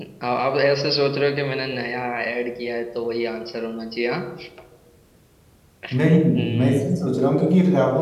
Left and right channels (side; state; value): both; identical; correlation 1.00